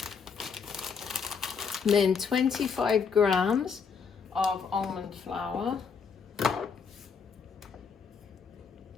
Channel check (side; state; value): right; quieter; 5.9 dB